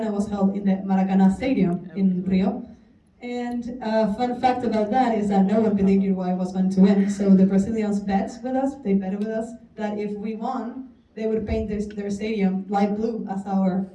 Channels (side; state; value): both; identical; correlation 1.00